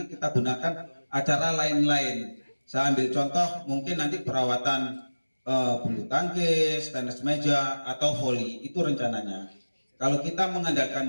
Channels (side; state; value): both; inverted; correlation -1.00